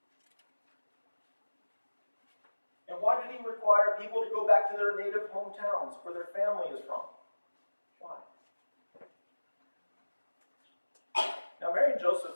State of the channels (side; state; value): both; inverted; correlation -1.00